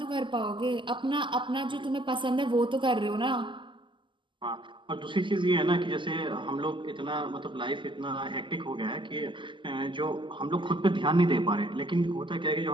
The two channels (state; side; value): late; left; 0.24 ms